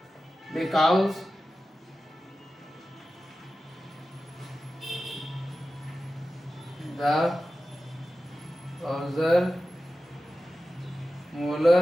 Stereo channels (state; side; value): normal; both; correlation 0.94